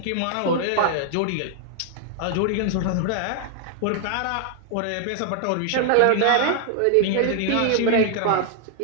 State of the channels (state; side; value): different; both; correlation 0.00